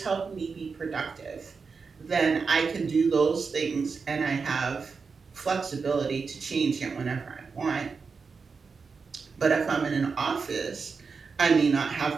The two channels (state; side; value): quieter; left; 5.0 dB